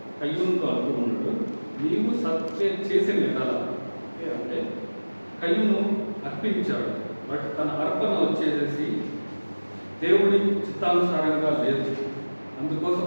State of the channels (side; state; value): both; inverted; correlation -1.00